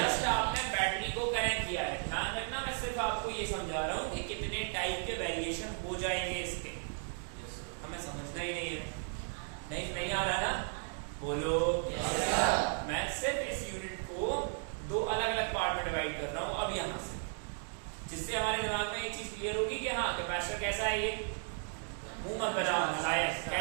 आपने बैटरी को कनेक्ट किया है। ध्यान रखना, मैं सिर्फ आपको ये समझा रहा हूँ कि कितने टाइप के वेरिएशन हो जाएंगे इसके, हमें समझना ही नहीं है। नहीं आ रहा ना? बोलो। मैं सिर्फ इस यूनिट को दो अलग अलग पार्ट में डिवाइड कर रहा हूँ अब यहाँ से, जिससे हमारे दिमाग में एक चीज क्लियर होगी कि हाँ कैपेसिटर कैसा है। ये मुंह मत बनाओ, शायद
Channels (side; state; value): left; silent; 54 dB below the other